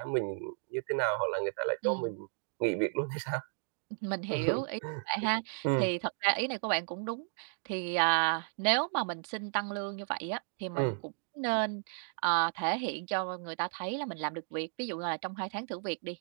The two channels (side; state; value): left; silent; 55 dB below the other